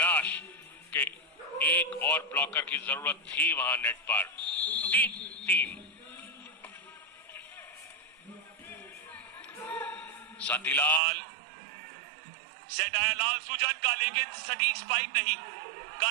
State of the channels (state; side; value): drops out; left; at 11.0 s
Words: कि एक और ब्लॉकर की जरूरत थी वहां नेट पर। 3-3 शांतिलाल, सेट आया लाल सुजन का, लेकिन सटीक स्पाइक नहीं।